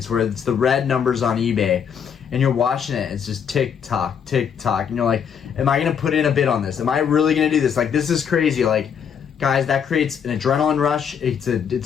where it's the red numbers on eBay and you're watching it, it's just tick tock, and you're like, am I gonna put in a bid on this? Am I really gonna do this? Like, this is crazy. Like, guys, that creates an adrenaline rush. It's a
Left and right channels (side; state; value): right; quieter; 7.6 dB